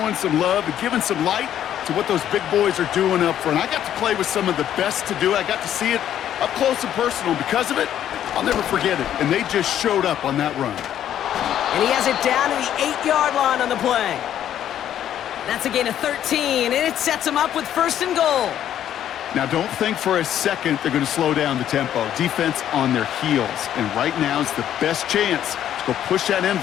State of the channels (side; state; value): right; quieter; 10.8 dB